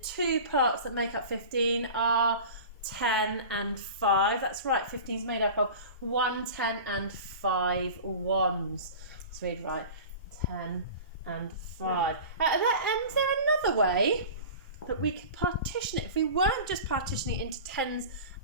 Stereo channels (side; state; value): both; inverted; correlation -0.36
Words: parts that make up 15 are 10 and 5. That's right, 15 is made up of 1 10 and 5 ones. Let's read right. 10 and 5. And is there another way that we could partition it if we weren't just partitioning it into 10s